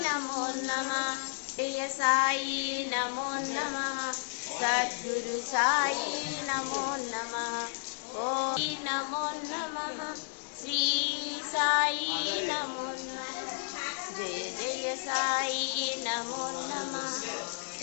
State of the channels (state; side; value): silent; right; 55 dB below the other